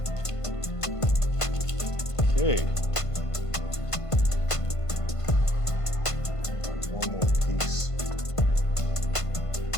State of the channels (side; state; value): right; late; 1.5 ms